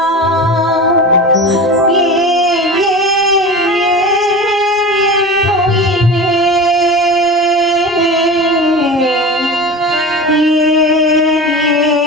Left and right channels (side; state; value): both; normal; correlation 0.31